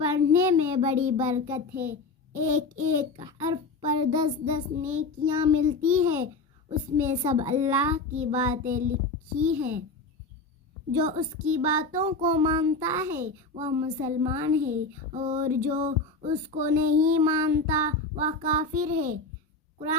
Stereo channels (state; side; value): quieter; right; 3.6 dB